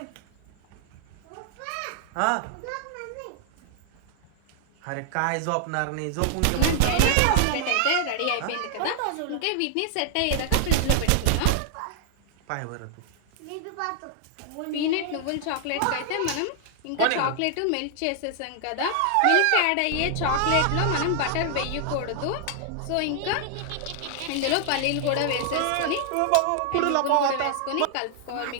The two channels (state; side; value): different; both; correlation 0.00